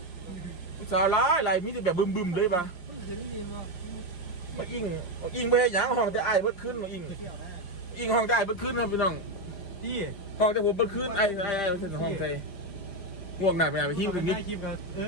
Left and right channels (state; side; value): late; right; 5.6 ms